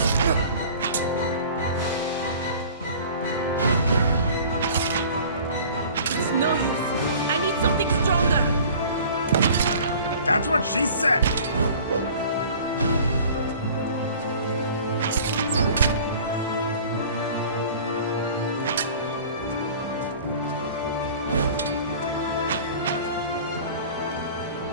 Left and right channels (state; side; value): inverted; both; correlation -0.45